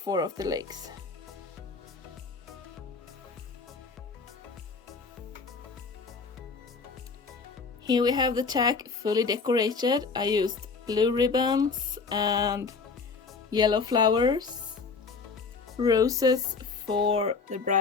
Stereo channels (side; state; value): right; quieter; 4.8 dB